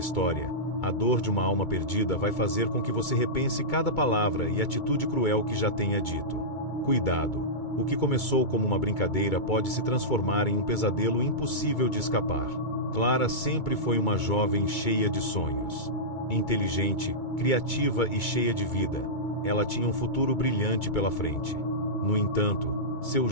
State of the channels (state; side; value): late; right; 2.3 ms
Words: a dor de uma alma perdida vai fazer com que você repense cada palavra e atitude cruel que já tenha dito. Cuidado! O que começou como uma brincadeira pode se transformar em um pesadelo impossível de escapar. Clara sempre foi uma jovem cheia de sonhos. Inteligente, criativa e cheia de vida, ela tinha um futuro brilhante pela frente. No entanto, seu